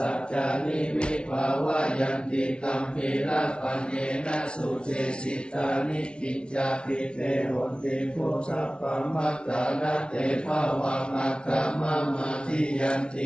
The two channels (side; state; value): right; late; 0.057 ms